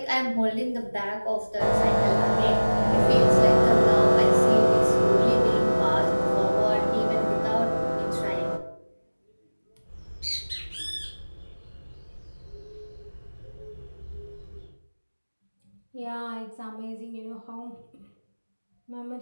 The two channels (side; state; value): both; inverted; correlation -1.00